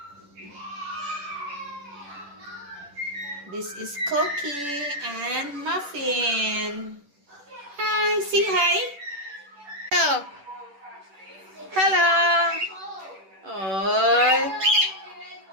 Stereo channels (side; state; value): left; late; 10 ms